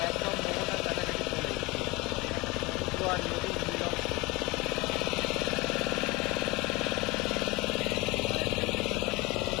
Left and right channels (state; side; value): quieter; right; 23.6 dB